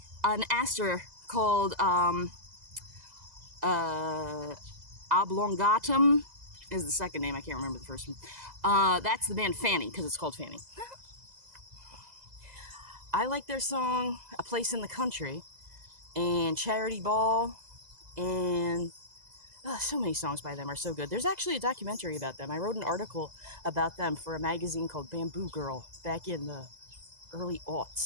an aster called Oblongatum is the second name. I can't remember the first one. That's the band Fanny, because it's called Fanny. I like their song, A Place in the Country, and Charity Ball, and so many songs by them are so good. There's actually a documentary about them. I wrote an article about them for a magazine called Bamboo Girl back in the early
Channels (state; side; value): late; left; 2.0 ms